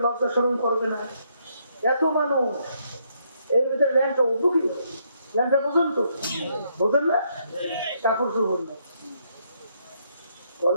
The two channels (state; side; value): inverted; both; correlation -0.73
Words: লজ্জা শরম করবে না? এত মানুষ, এর ভিতরে ল্যাংটা উঠবো কি? ল্যাংটা পর্যন্ত বোঝেন না, কাপড় চোপড় না।